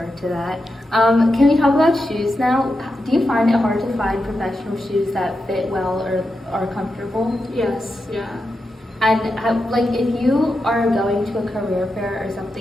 to that. Can we talk about shoes now? Do you find it hard to find professional shoes that fit well or are comfortable? Yes, yeah. And if you are going to a career fair or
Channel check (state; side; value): normal; both; correlation 0.88